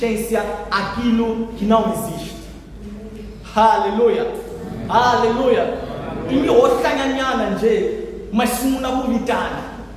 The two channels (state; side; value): identical; both; correlation 1.00